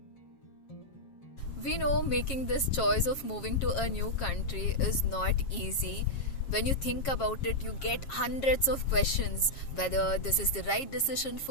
We know making this choice of moving to a new country is not easy. When you think about it, you get hundreds of questions whether this is the right decision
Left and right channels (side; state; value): right; late; 7.4 ms